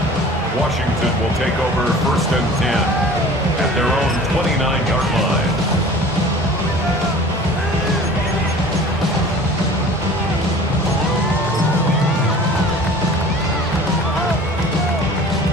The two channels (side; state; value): both; normal; correlation 0.44